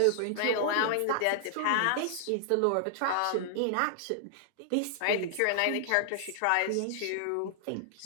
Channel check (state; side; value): different; both; correlation -0.01